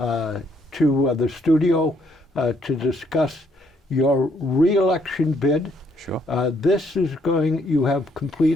the studio to discuss your re-election bid. Sure. You have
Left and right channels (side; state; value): both; normal; correlation 0.70